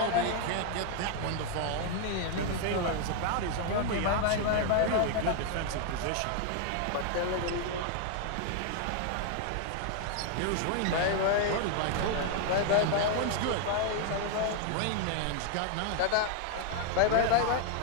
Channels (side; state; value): both; different; correlation 0.00